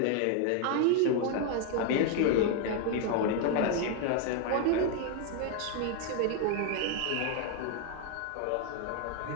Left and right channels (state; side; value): different; both; correlation 0.00